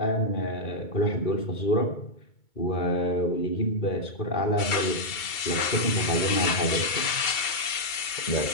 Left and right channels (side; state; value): right; late; 2.2 ms